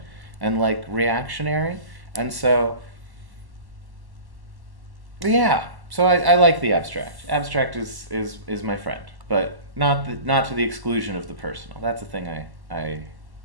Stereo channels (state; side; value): late; left; 1.1 ms